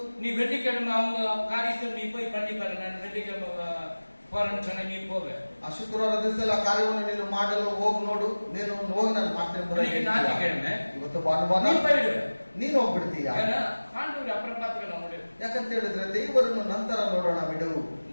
நீ வெள்ளிக்கிழமை அவங்க காரியத்தில் நீ போய் பண்ணி பாரு. நான் வெள்ளிக்கிழமை போறேன்னு சொன்ன, நீ போக. ಆ ಶುಕ್ರವಾರ ದಿವಸ ಆ ಕಾರ್ಯವನ್ನು ನೀನು ಮಾಡಲು ಹೋಗಿ ನೋಡು, ನೀನು ಹೋಗಿ ನಾನು ಮಾಡ್ತೇನೆ. ஞாயிற்றுக்கிழமை ಇವತ್ತು ಭಾನುವಾರ நீ போயிடுவ, ನೀನು ಹೋಗ್ಬಿಡ್ತೀಯ. ஆண்டவர் அப்புறம் பார்த்துக்கலாம் முடியும். ಯಾಕಂತ ಹೇಳಿದ್ರೆ ದೇವರನ್ನು ನಂತರ ನೋಡೋಣ ಬಿಡು.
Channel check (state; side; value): inverted; both; correlation -1.00